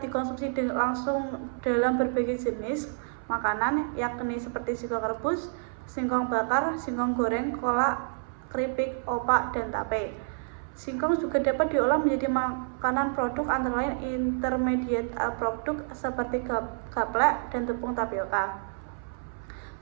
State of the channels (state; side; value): silent; left; 59 dB below the other